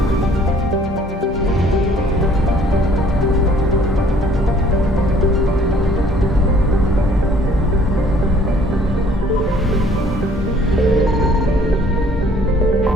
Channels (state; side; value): normal; both; correlation 0.58